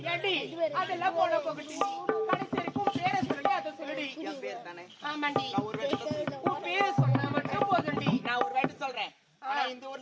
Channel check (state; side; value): identical; both; correlation 1.00